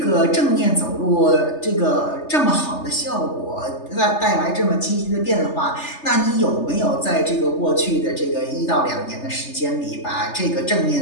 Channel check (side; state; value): right; late; 3.3 ms